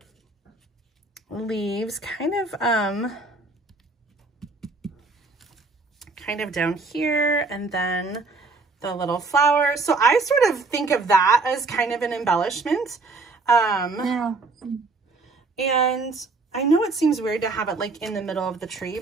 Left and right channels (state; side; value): quieter; left; 3.7 dB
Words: leaves kind of down here, and then the little flower. So I sort of think of that as kind of an embellishment. Yeah. And I know it seems weird to have it like in the middle of the tree,